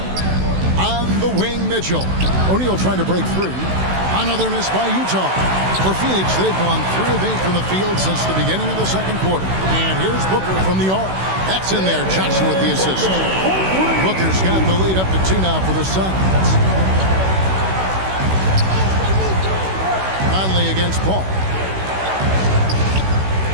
On the wing, Mitchell. O'Neal trying to break free. Another miss by Utah. For Phoenix, they've gone 3 of 8 from the field since the beginning of the second quarter. And here's Booker from the arc. That's in there. Johnson with the assist. Booker's got the lead up to 2 now for the Suns. Conley against Paul.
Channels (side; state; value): left; late; 16 ms